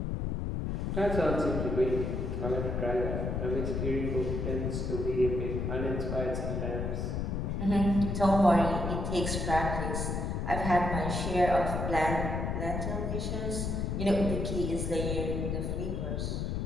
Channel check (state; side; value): noise; left; rumble, 1 dB below the sound